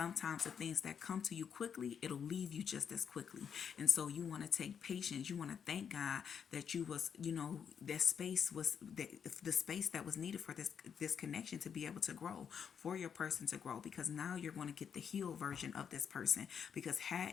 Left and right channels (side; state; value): right; quieter; 7.4 dB